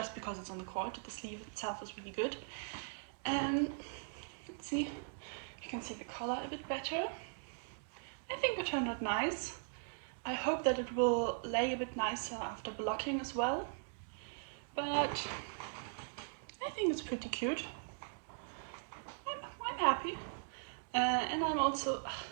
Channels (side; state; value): left; silent; digital silence